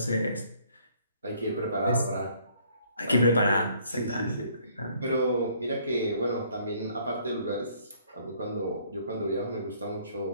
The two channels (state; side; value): inverted; both; correlation -0.62